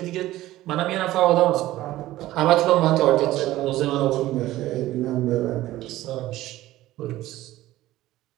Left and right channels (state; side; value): quieter; left; 15.8 dB